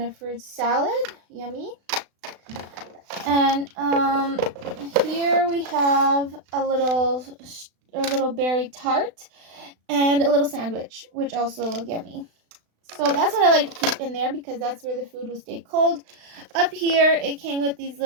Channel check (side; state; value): left; late; 36 ms